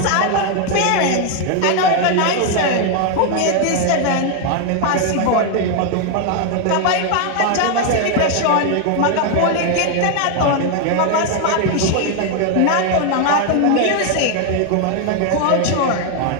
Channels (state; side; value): different; both; correlation 0.00